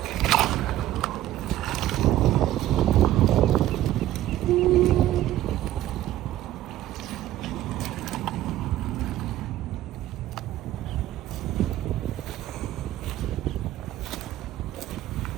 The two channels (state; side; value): quieter; left; 13.9 dB